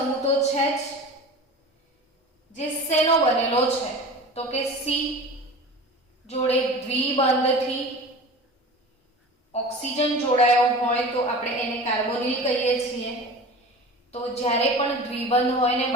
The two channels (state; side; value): normal; both; correlation 0.36